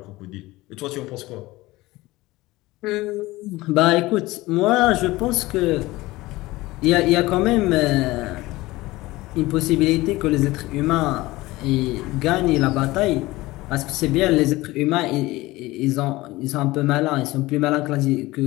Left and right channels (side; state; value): right; quieter; 19.4 dB